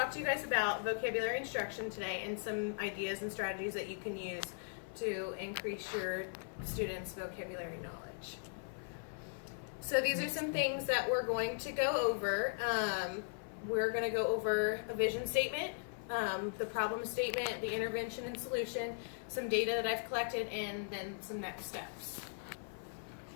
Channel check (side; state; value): right; silent; 52 dB below the other